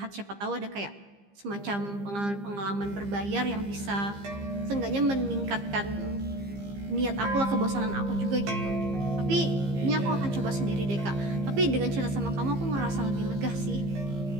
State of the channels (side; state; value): left; late; 15 ms